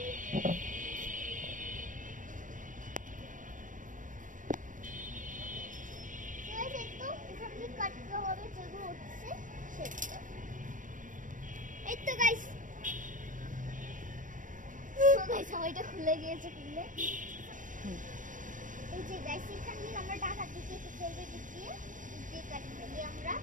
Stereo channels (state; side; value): late; left; 0.38 ms